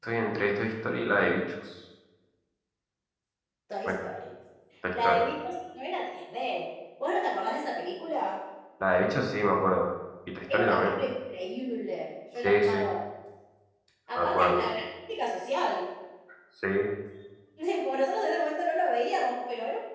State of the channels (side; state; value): both; identical; correlation 1.00